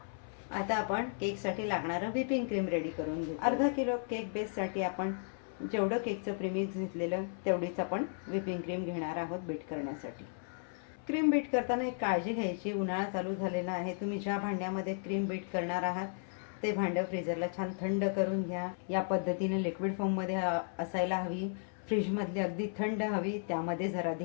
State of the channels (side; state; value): right; silent; 55 dB below the other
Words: आता आपण केकसाठी लागणारं व्हिपिंग क्रीम रेडी करून घेऊ. अर्धा किलो केक बेससाठी आपण जेवढं केकचं प्रीमिक्स घेतलेलं तेवढीच आपण व्हिपिंग क्रीम घेणार आहोत बीट करण्यासाठी. क्रीम बीट करताना एक काळजी घ्यायची, उन्हाळा चालू झालेला आहे. तुम्ही ज्या भांड्यामध्ये क्रीम बीट करणार आहात ते भांडं फ्रीजरला छान थंड करून घ्या. या पद्धतीने लिक्विड फॉर्ममध्ये असायला हवी. फ्रीजमधली अगदी थंड हवी, त्यामध्ये जरा